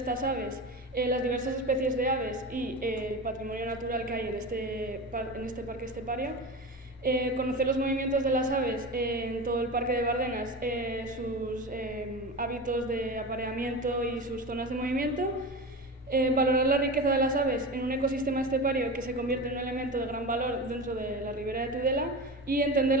aves las diversas especies de aves y el patrimonio natural que hay en este parque estepario, conocer los movimientos de las aves en todo el parque de Bardenas, sus hábitos de apareamiento y sus zonas de movimiento, valorar la riqueza de las aves en un ecosistema estepario que se convierte en un elemento de gran valor dentro de la ribera de Tudela y entender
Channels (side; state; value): both; normal; correlation 0.27